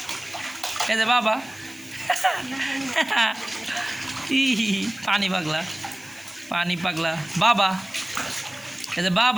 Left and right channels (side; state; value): left; noise; hiss, 21 dB below the sound